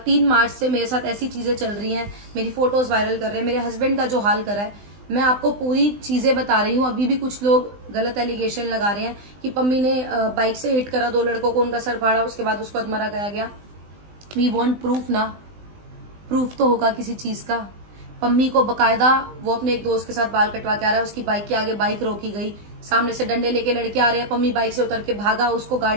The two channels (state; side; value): late; left; 20 ms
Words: मार्च से मेरे साथ ऐसी चीजें चल रही हैं, मेरी फोटोज वायरल कर रहे हैं, मेरे हस्बैंड का जो हाल करा है, मैं आपको पूरी चीजें बता रही हूँ। अभी भी कुछ लोग गलत एलिगेशन लगा रहे हैं कि पम्मी ने बाइक से हिट करा 2 लड़कों को, उनका सर फाड़ा, उसके बाद उसको अधमरा गया गया। वी वांट प्रूफ ना, प्रूफ तो होगा किसी चीज का। पम्मी को बकायदा वो अपने एक दोस्त के साथ बाल कटवा के आ रहा है, उसकी बाइक के आगे बाइक रोकी गई, सामने से डंडे लेके लड़के आ रहे हैं, पम्मी बाइक से उतर के भागा, उसको